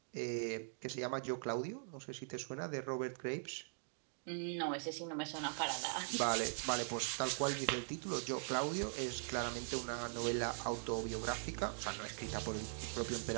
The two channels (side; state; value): left; silent; digital silence